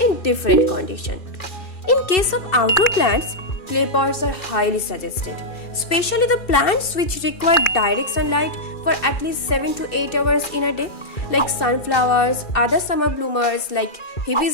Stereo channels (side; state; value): right; late; 2.4 ms